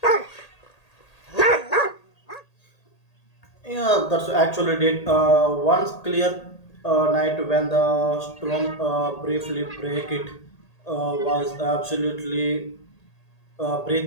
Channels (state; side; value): late; right; 1.8 ms